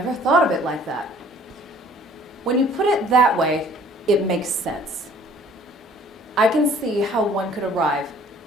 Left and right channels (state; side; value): normal; both; correlation 0.54